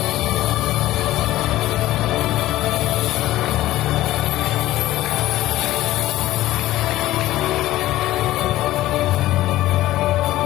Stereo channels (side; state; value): right; quieter; 15.7 dB